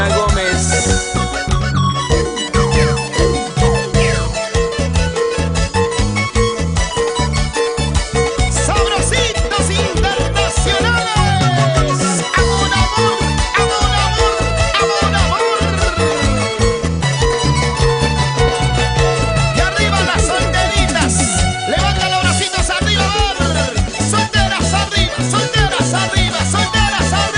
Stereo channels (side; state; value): both; identical; correlation 1.00